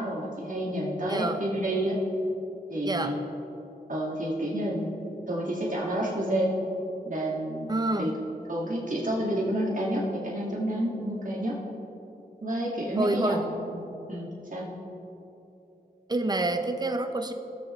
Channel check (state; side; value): normal; both; correlation 0.70